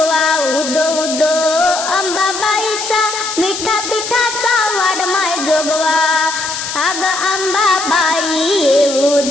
उदो उदो अंबाबाईचा मिठा पिठाचा वाढमाय जोगवा. अग अंबाबाई येऊ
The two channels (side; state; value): left; noise; hiss, 6 dB below the sound